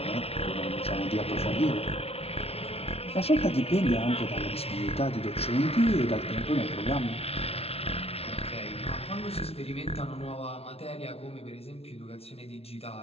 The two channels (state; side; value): late; right; 0.29 ms